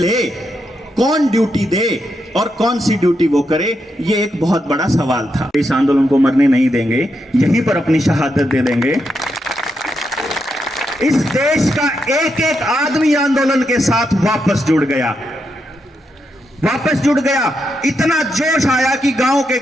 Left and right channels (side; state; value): both; normal; correlation 0.83